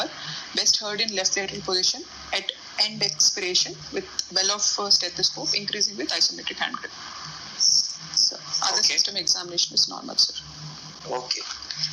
best heard in left lateral position at end expiration with well of stethoscope, increasing with isometric hand grip. So other system examination is normal, sir. Okay.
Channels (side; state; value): both; identical; correlation 1.00